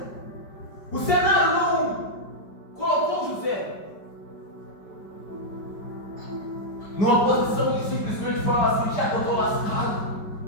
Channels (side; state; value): right; late; 5.2 ms